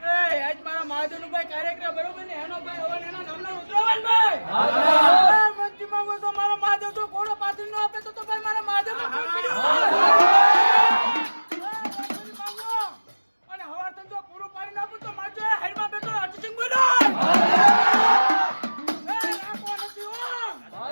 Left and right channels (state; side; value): inverted; both; correlation -1.00